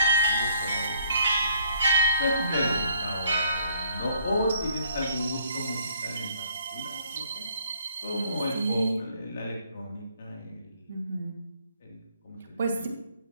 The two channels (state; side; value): inverted; both; correlation -0.63